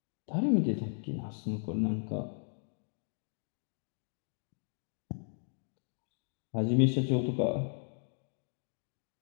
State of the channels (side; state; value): right; silent; digital silence